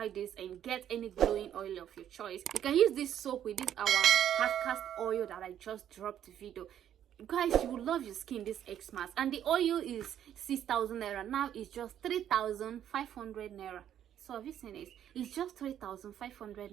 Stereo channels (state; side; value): quieter; left; 10.3 dB